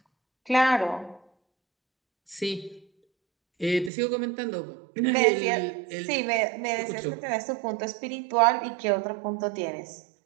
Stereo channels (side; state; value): left; drops out; at 3.9 s